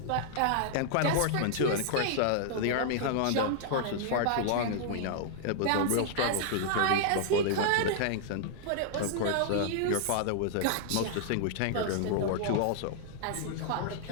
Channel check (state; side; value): different; both; correlation -0.01